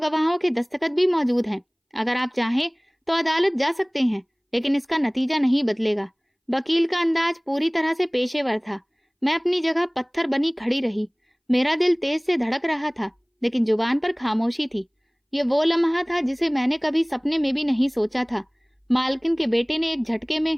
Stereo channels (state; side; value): identical; both; correlation 1.00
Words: के दस्तखत भी मौजूद हैं। अगर आप चाहें तो अदालत जा सकते हैं, लेकिन इसका नतीजा नहीं बदलेगा। वकील का अंदाज पूरी तरह से पेशेवर था। मैं अपनी जगह पत्थर बनी खड़ी रही। मेरा दिल तेज से धड़क रहा था, लेकिन जुबान पर खामोशी थी। ये वो लम्हा था जिसे मैंने कभी सपने में भी नहीं सोचा था। मालकिन के बेटे ने एक झटके में